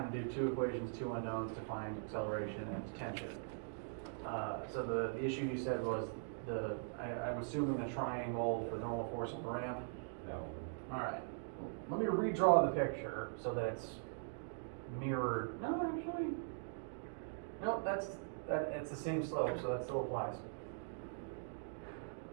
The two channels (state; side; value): silent; left; digital silence